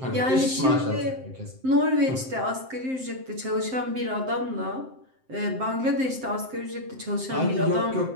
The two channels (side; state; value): left; late; 7.7 ms